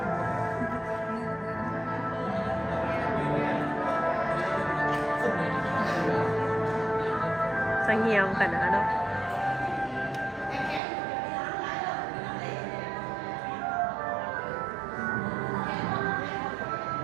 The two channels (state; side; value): drops out; left; at 10.8 s